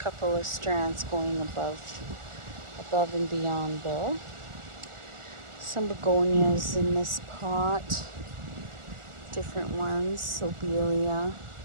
couple of strands going above and beyond there. Some begonias in this pot, different ones, lobelia.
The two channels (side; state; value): left; late; 1.4 ms